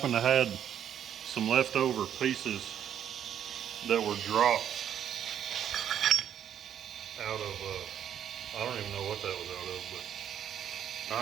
to had some leftover pieces that were dropped out of, I don't even know what that was out of, but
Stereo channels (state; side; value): quieter; left; 9.6 dB